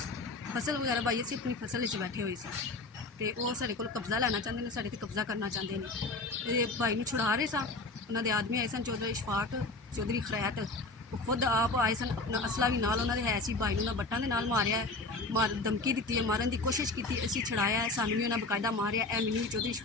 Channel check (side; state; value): right; quieter; 3.3 dB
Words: ਫਸਲ ਵਗੈਰਾ ਭਾਈ ਅਸੀਂ ਆਪਣੀ ਫਸਲ ਵਿੱਚ ਬੈਠੇ ਹੋਏ ਸੀ ਤੇ ਉਹ ਸਾਡੇ ਕੋਲ ਕਬਜ਼ਾ ਲੈਣਾ ਚਾਹੁੰਦੇ ਨੇ, ਸਾਡੇ ਤੇ ਕਬਜ਼ਾ ਕਰਨਾ ਚਾਹੁੰਦੇ ਨੇ। ਇਹ ਭਾਈ ਨੂੰ ਛੁਡਾ ਰਹੇ ਸਾਂ, ਉਹਨਾਂ ਦੇ ਆਦਮੀ ਆਏ ਸਨ, ਚੌਧਰੀ اشفاق, ਚੌਧਰੀ ਖਰੈਤ, ਉਹ ਖੁਦ ਆਪ ਆਏ ਸਨ, ਅਸਲਾ ਵੀ ਨਾਲ ਉਹਨਾਂ ਦੇ ਹੈ ਸੀ। ਭਾਈ ਨੂੰ ਉਹਨਾਂ ਬੱਟਾਂ ਦੇ ਨਾਲ ਮਾਰਿਆ ਹੈ, ਧਮਕੀ ਦਿੱਤੀ ਹੈ, ਮਾਰਨ ਦੀ ਕੋਸ਼ਿਸ਼ ਕੀਤੀ, ਅਸੀਂ ਛੁਡਾਇਆ ਹੈ, ਸਾਨੂੰ ਵੀ ਉਹਨਾਂ ਬਕਾਇਦਾ ਮਾਰਿਆ। ਇਹ ਮੈਨੂੰ ਵੀ ਚੌਧਰੀ